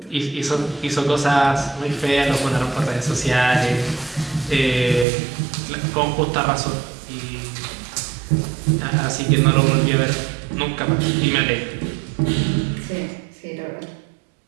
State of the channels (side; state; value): left; drops out; at 5.1 s